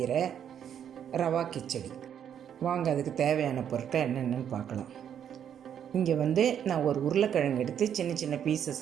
ரவா கிச்சடி. வாங்க அதுக்கு தேவையான பொருட்கள் என்னென்னு பார்க்கலாம். இங்கே நான் ஒரு உருளைக்கிழங்கு எடுத்து சின்ன சின்ன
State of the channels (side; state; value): left; quieter; 9.0 dB